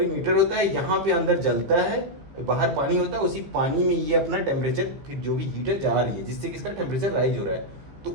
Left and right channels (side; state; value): left; late; 15 ms